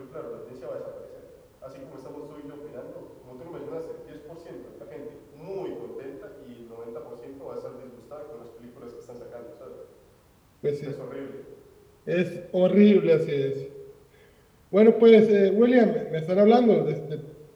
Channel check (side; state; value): both; identical; correlation 1.00